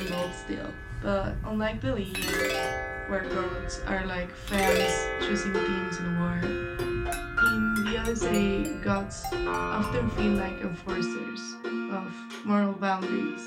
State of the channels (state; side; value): identical; both; correlation 1.00